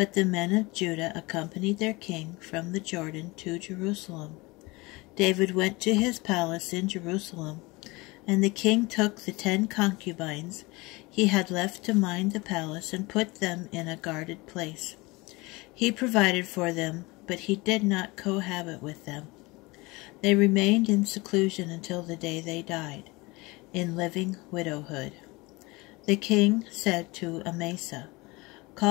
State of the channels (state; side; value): quieter; right; 23.7 dB